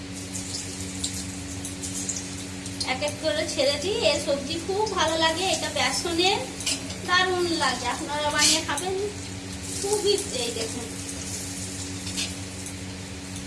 এক এক করে ছেড়েছি। এই সবজি খুব ভালো লাগে, এটা বেসনের দারুণ লাগে। আপনারা বানিয়ে খাবেন, খুবই। এই দেখুন,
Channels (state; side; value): identical; both; correlation 1.00